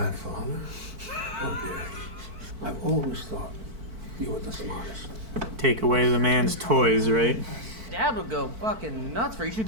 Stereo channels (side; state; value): left; late; 4.5 ms